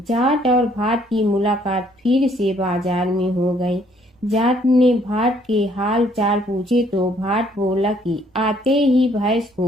जाट और भाट की मुलाकात फिर से बाजार में हो गई। जाट ने भाट के हाल चाल पूछे तो भाट बोला कि आते ही भैंस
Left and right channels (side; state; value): both; normal; correlation 0.64